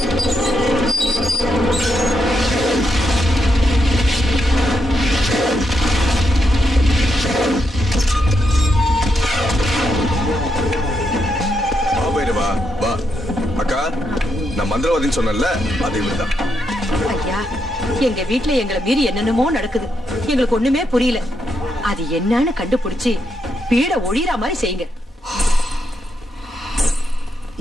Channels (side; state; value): both; normal; correlation 0.81